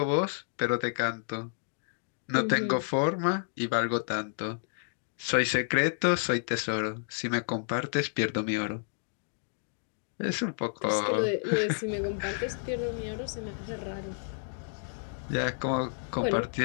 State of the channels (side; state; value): right; silent; digital silence